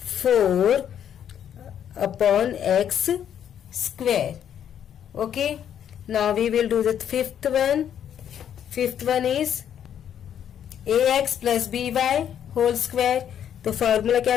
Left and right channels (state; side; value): quieter; right; 9.4 dB